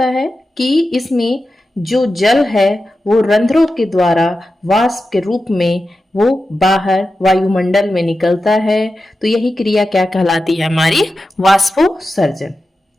है कि इसमें जो जल है वो रंध्रों के द्वारा वाष्प के रूप में वो बाहर वायुमंडल में निकलता है। तो यही क्रिया क्या कहलाती है? हमारी वाष्पोत्सर्जन।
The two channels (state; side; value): normal; both; correlation 0.92